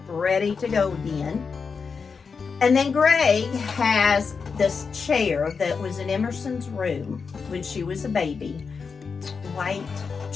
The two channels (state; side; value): quieter; right; 5.4 dB